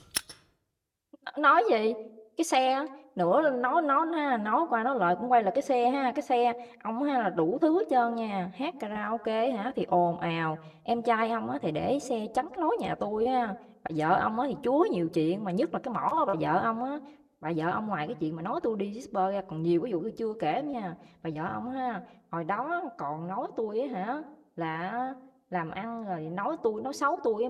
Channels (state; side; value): identical; both; correlation 1.00